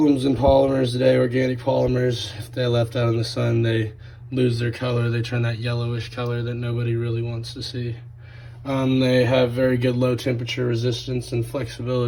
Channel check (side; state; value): both; identical; correlation 1.00